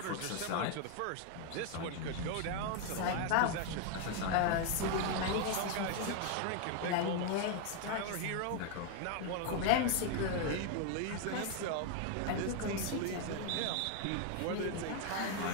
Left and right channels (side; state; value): both; different; correlation 0.01